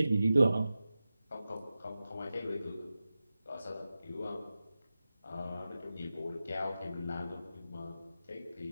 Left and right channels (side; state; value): both; inverted; correlation -0.94